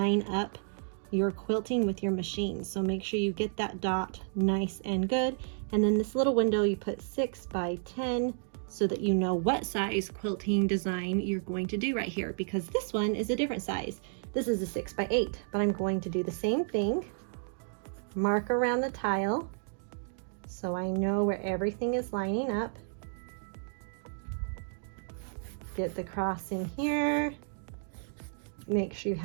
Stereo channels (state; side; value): silent; left; digital silence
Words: up your quilting with your machine. So make sure you get that dot nice and good. And then this little window you put 6x10 so that you know what size quilting design you're going to do right here, because this one is a different size. This is a 6x8, but I'm going to do the same thing. Mark around the tile so I know where everything is lining up. Get the cross in here. Make sure you